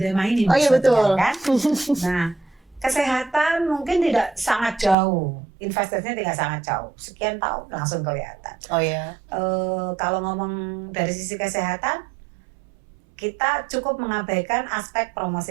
tema ini. Oh iya betul. Kan? Nah, kesehatan mungkin tidak sangat jauh, investasinya tidak sangat jauh. Sekian tahun langsung kelihatan. Oh iya. Kalau ngomong dari sisi kesehatan, kita cukup mengabaikan aspek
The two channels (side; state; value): left; drops out; at 5.0 s